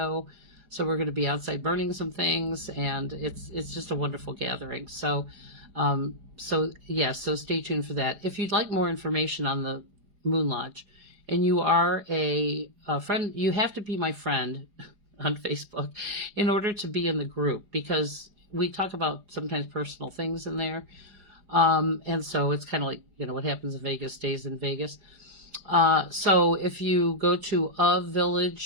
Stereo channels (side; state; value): left; late; 4.9 ms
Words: So we're going to be outside burning some things, and it's just a wonderful gathering. So stay tuned for that. If you'd like more information on the Moon Lodge, and you are a friend, you have to be my friend on Facebook in order to be in the group, because we talk about sometimes personal things in there. And so it's kind of like, what happens in Vegas stays in Vegas. So if you go to A